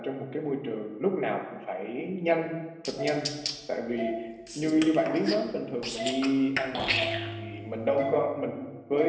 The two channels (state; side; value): identical; both; correlation 1.00